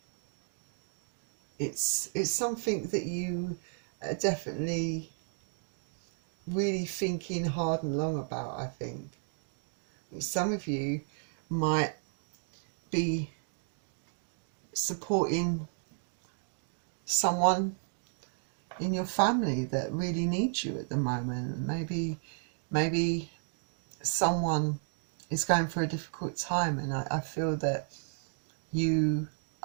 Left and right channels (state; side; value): silent; left; 56 dB below the other